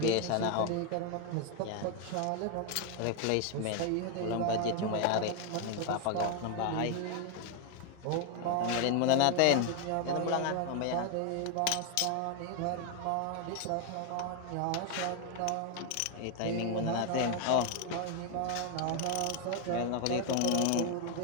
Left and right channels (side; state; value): both; different; correlation 0.01